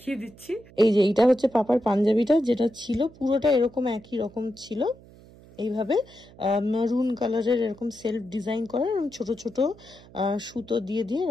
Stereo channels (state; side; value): noise; right; hum, 23 dB below the sound